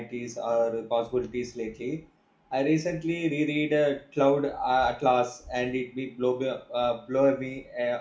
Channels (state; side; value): identical; both; correlation 1.00